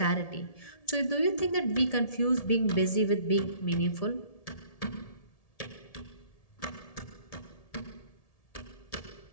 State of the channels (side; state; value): right; late; 1.7 ms